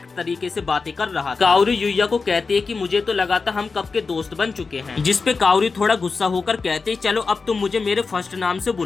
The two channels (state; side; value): quieter; right; 4.5 dB